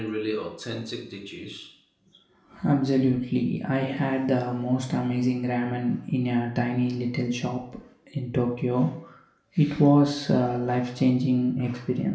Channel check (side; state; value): both; identical; correlation 1.00